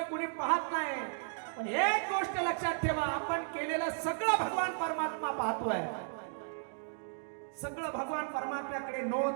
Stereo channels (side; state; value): left; silent; digital silence